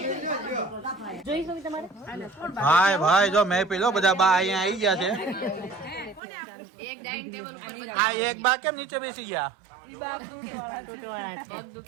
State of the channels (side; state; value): left; drops out; at 6.2 s